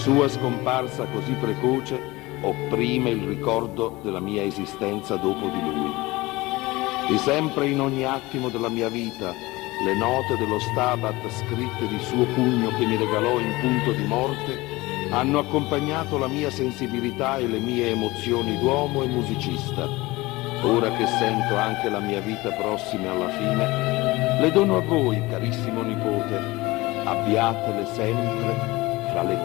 scomparsa così precoce opprime il ricordo della mia esistenza dopo di lui. E sempre in ogni attimo della mia vita le note dello Stabat scritte di suo pugno che mi regalò in punto di morte hanno accompagnato la mia sensibilità e le mie emozioni d'uomo e musicista. Ora che sento anche la mia vita prossima alla fine, le dono a voi, carissimo nipote. Abbiatele sempre fra le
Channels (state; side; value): quieter; right; 20.9 dB